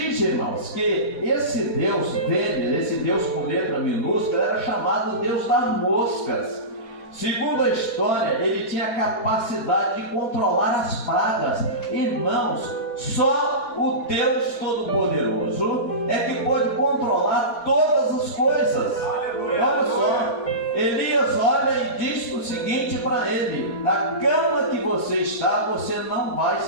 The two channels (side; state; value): right; late; 4.1 ms